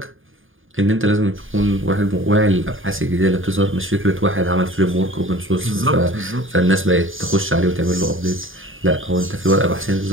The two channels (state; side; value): late; left; 0.59 ms